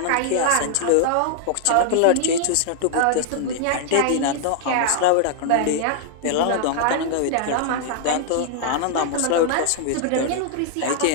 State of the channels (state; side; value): different; both; correlation -0.01